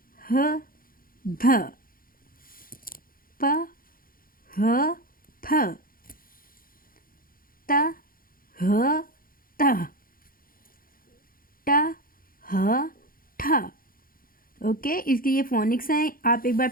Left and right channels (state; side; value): late; right; 0.42 ms